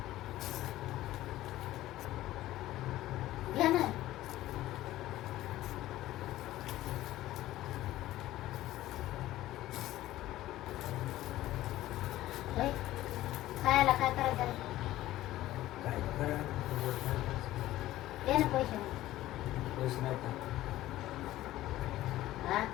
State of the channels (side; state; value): right; quieter; 15.3 dB